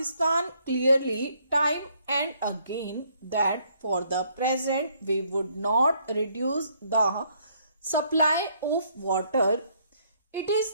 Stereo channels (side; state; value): both; inverted; correlation -0.68